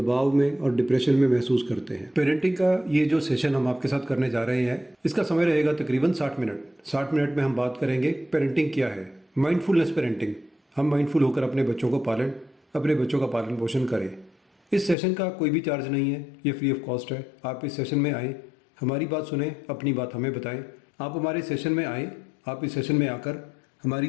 में और डिप्रेशन में महसूस करते हैं। पेरेंटिंग का ये जो सेशन हम आपके साथ करने जा रहे हैं, इसका समय रहेगा तकरीबन 60 मिनट। 60 मिनट में हम बात करेंगे पेरेंटिंग क्या है, माइंडफुलनेस पेरेंटिंग। हम माइंडफुल होकर अपने बच्चों को पालें, अपने बच्चों का पालन पोषण करें। इस सेशन का कोई भी चार्ज नहीं है, ये फ्री ऑफ कॉस्ट है। आप इस सेशन में आएँ, हमारी बात सुने, अपनी बात हमें बताएं। आप हमारे सेशन में आएँ, आप इस सेशन में आकर हमारी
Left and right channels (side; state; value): right; drops out; at 15.0 s